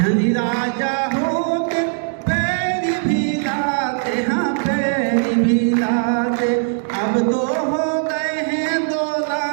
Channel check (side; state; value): left; silent; 66 dB below the other